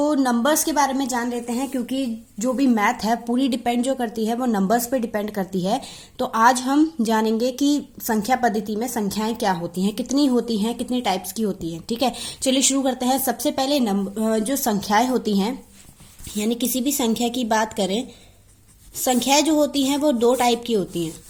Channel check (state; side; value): identical; both; correlation 1.00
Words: नंबर्स के बारे में जान लेते हैं, क्योंकि जो भी मैथ है पूरी डिपेंड जो करती है वो नंबर्स पे डिपेंड करती है। तो आज हम जानेंगे कि संख्या पद्धति में संख्याएं क्या होती हैं, कितनी होती हैं, कितनी टाइप्स की होती हैं। ठीक है, चलिए शुरू करते हैं। सबसे पहले जो संख्याएं होती हैं, यानी किसी भी संख्या की बात करें, संख्याएं जो होती हैं वो दो टाइप की होती हैं।